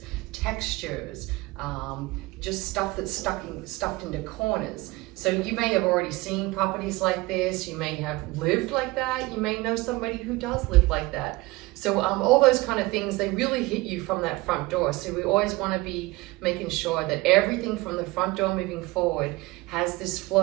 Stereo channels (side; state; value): left; quieter; 21.6 dB